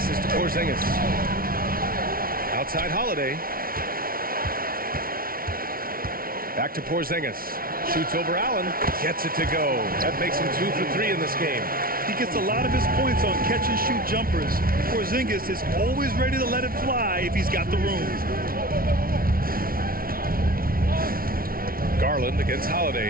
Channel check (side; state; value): left; late; 0.43 ms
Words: to Porzingis. Outside Holiday. Back to Porzingis. Shoots over Allen. Gets it to go. That makes him 2 for 3 in this game. He gets a lot of his points on catch-and-shoot jumpers. Porzingis is always ready to let it fly if he's got the room. Garland against